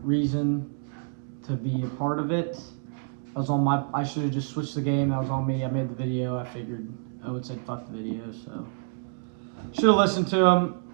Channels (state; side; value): silent; left; 60 dB below the other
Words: reason to be a part of it. That was on my. I should have just switched the game. That was on me. I made the video. I figured Owen said fuck the video, so should have listened to